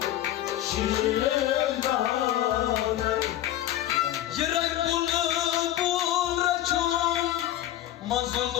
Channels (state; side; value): quieter; right; 13.4 dB